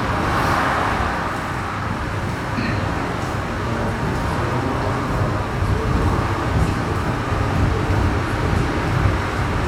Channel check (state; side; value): identical; both; correlation 1.00